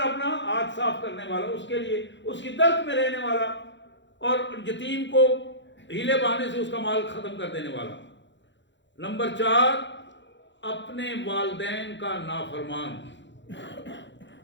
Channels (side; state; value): right; late; 0.53 ms